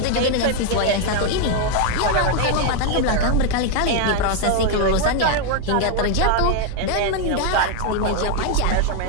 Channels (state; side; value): different; both; correlation 0.01